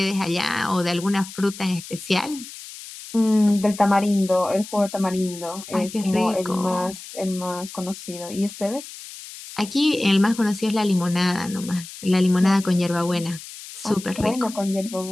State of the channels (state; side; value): noise; left; hiss, 14 dB below the sound